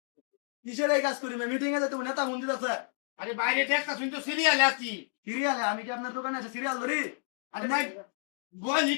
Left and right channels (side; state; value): right; silent; 57 dB below the other